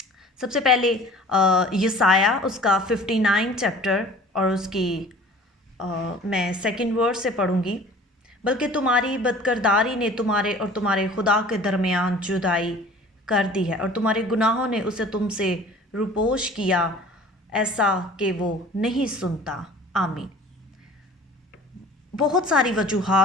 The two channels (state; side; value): normal; both; correlation 0.46